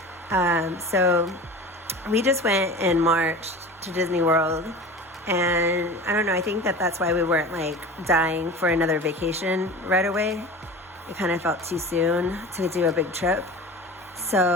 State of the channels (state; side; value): normal; both; correlation 0.35